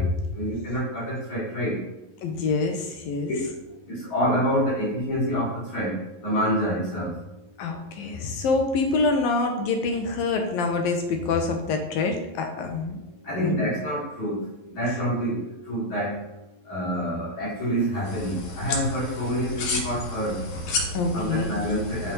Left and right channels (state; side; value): late; right; 11 ms